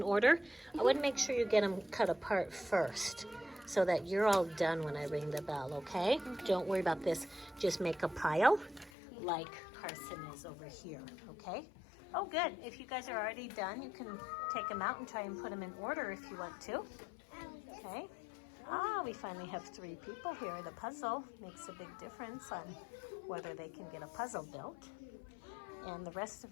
order. I would make sure you get them cut apart first so that you're all done when I ring the bell, okay? Don't worry about this. Just make a pile like Carson is over here, okay? Oh, good. If you guys are already done, you can take them out and try and put them in order if you want to, okay? We finally have 3 people here. The puzzle makes a big difference on whether they can get a puzzle built. And the rest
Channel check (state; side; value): drops out; right; at 8.9 s